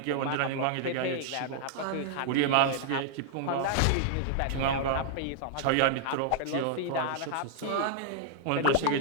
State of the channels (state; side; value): different; both; correlation -0.01